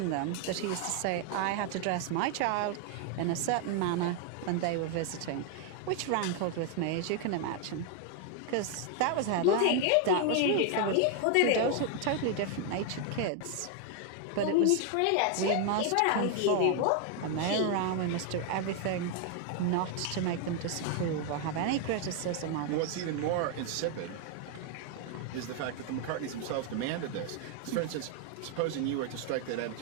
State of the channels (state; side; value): different; both; correlation 0.00